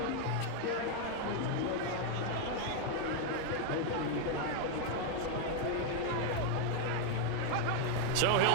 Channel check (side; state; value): both; different; correlation 0.01